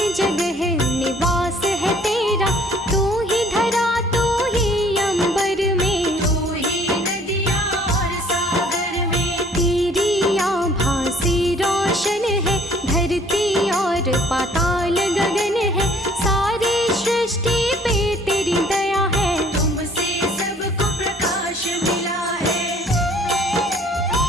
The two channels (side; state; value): both; normal; correlation 0.57